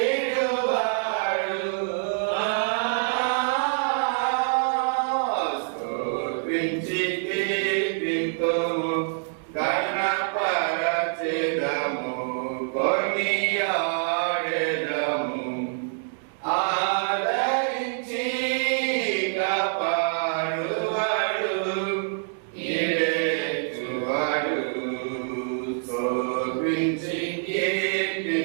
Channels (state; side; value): silent; left; digital silence